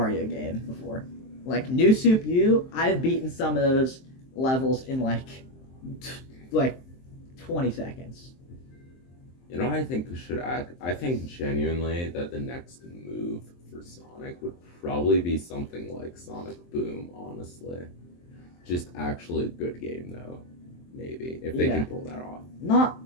game before. Like New Soup U, I've beaten some of those levels in like 20 seconds. You know what I think should act? I think genuinely that the next move for Sonic would probably be something like Sonic Boom, honestly. Just actually a good game, though. Maybe, if they can pull that off. Not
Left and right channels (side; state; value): right; late; 23 ms